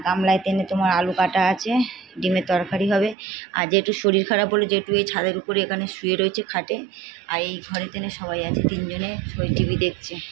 গামলায় তেনে তোমার আলু কাটা আছে, ডিমের তরকারি হবে। আর যেটু শরীর খারাপ বলে যেটু এই ছাদের উপরে এখানে শুয়ে রয়েছে খাটে। আর এই ঘরে তেনে সবাই আছে, তিনজনে সবাই টিভি দেখছে,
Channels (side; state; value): left; drops out; at 3.2 s